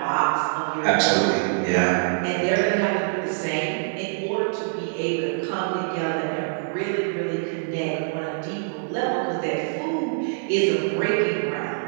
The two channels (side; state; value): left; silent; digital silence